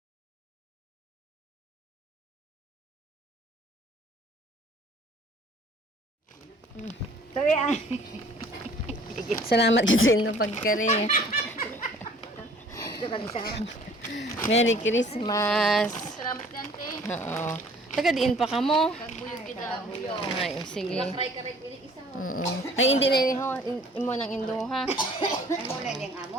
Sabi ay. Salamat kasi no pagkari. Merry Christmas. Salamat Dante. Oo. Taga diin pa ka mo. Kagbuyog kita. Ay, sige. Try ka rin piling isa. Ay, hindi na rin ho. Imo ng indo ha. Ay mo na yung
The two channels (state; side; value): normal; both; correlation 0.53